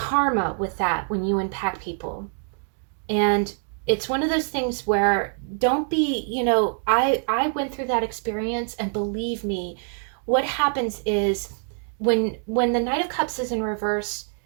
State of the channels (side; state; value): left; silent; 61 dB below the other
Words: with that when you impact people. And it's one of those things where don't be, I went through that experience, and believe me, what happens is when the Knight of Cups is in reverse,